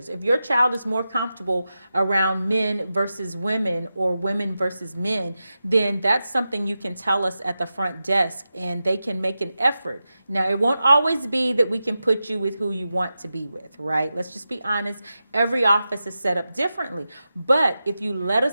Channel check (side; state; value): both; inverted; correlation -0.92